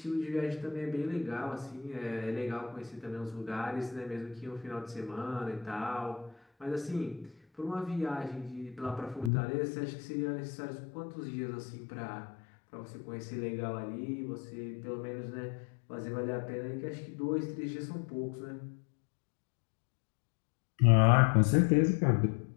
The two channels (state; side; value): drops out; right; at 9.3 s